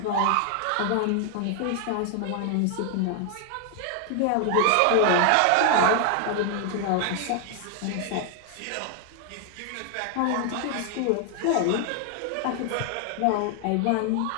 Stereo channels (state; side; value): different; both; correlation 0.00